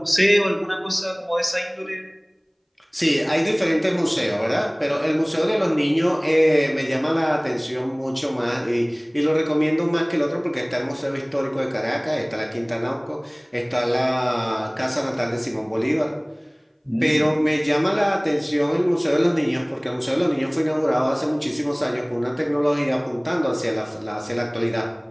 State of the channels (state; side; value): identical; both; correlation 1.00